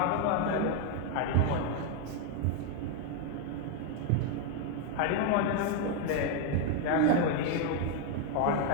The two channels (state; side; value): different; both; correlation 0.01